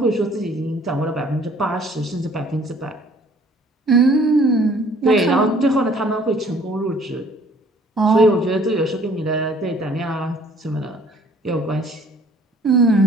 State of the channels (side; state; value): both; normal; correlation 0.57